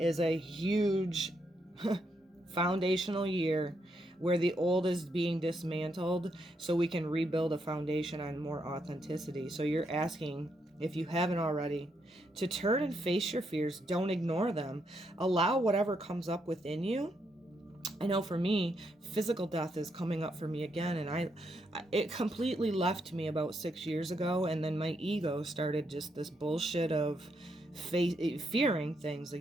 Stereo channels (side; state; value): both; normal; correlation 0.78